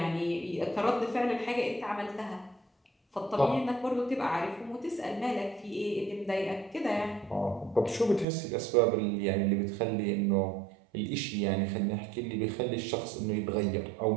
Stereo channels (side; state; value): left; drops out; at 8.2 s